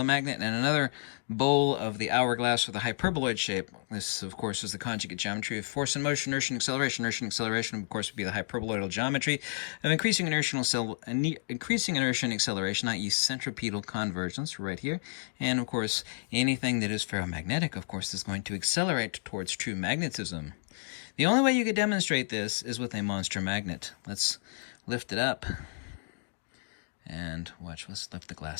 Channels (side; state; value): right; silent; digital silence